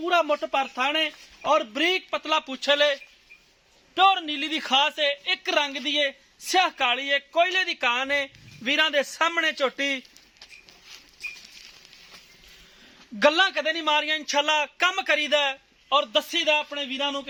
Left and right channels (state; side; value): identical; both; correlation 1.00